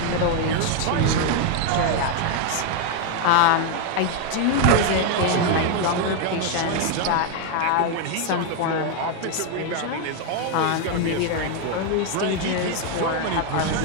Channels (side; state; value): both; different; correlation 0.01